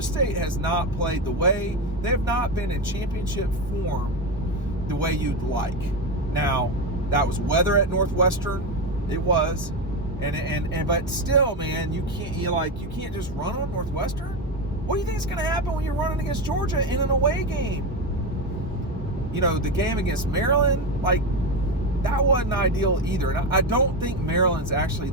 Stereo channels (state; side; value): normal; both; correlation 0.14